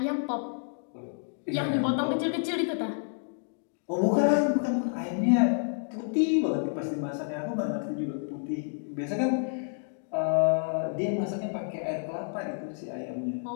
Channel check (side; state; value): right; silent; digital silence